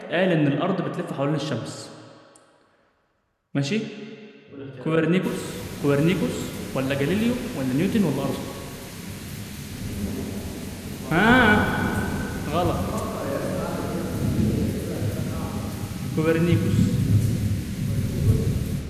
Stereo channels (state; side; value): identical; both; correlation 1.00